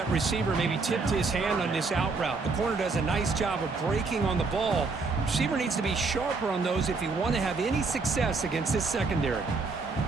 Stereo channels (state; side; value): quieter; left; 4.1 dB